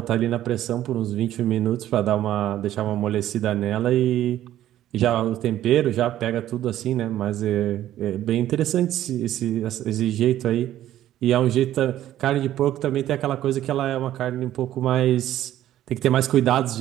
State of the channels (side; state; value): left; quieter; 12.8 dB